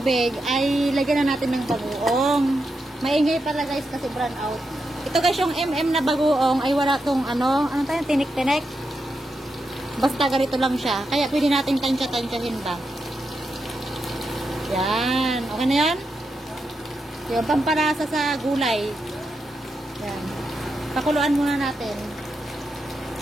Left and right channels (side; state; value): both; normal; correlation 0.85